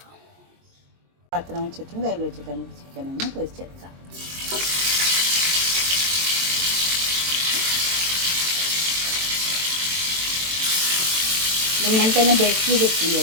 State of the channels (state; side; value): late; left; 23 ms